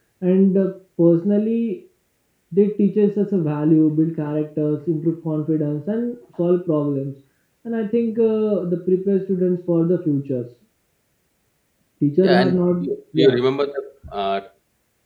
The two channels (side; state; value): both; identical; correlation 1.00